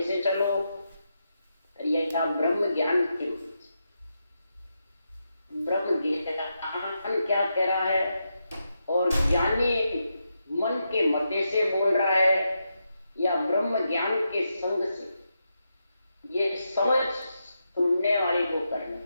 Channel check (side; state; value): both; inverted; correlation -0.85